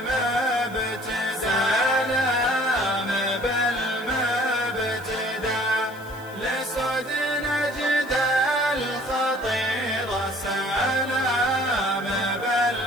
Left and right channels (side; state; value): left; noise; hiss, 23 dB below the sound